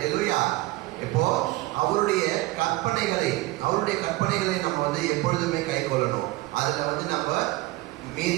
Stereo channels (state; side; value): quieter; left; 19.5 dB